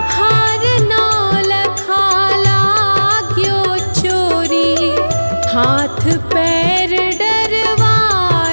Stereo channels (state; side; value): inverted; both; correlation -1.00